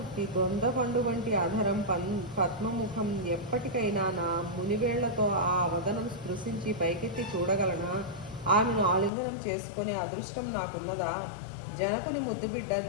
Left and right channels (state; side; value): drops out; right; at 9.1 s